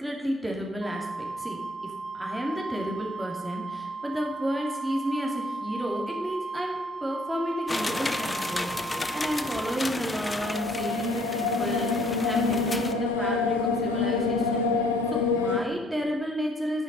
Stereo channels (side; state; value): both; normal; correlation 0.62